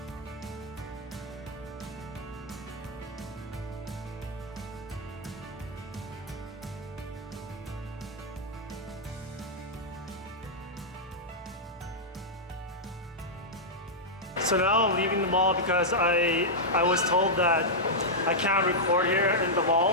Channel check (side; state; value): both; normal; correlation -0.08